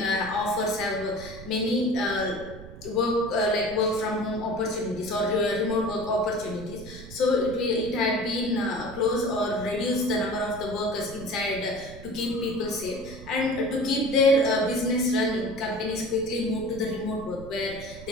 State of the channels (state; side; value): noise; right; rumble, 15 dB below the sound